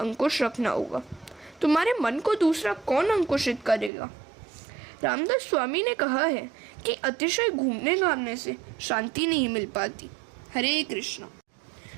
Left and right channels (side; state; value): left; drops out; at 3.9 s